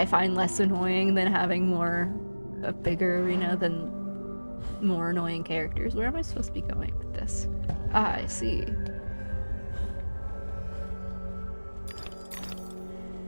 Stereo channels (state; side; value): inverted; both; correlation -1.00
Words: find less annoying than having a bigger arena than more annoying characters. Where am I supposed to be going with this? Ah, I see.